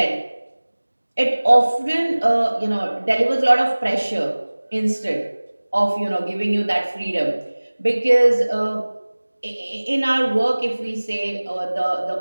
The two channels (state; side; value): inverted; both; correlation -1.00